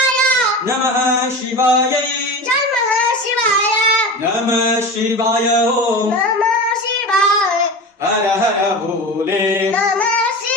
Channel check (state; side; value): normal; both; correlation 0.29